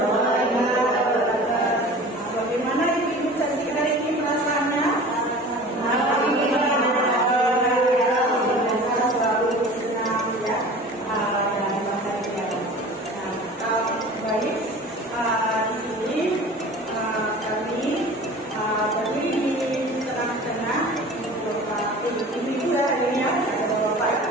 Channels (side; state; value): both; normal; correlation 0.40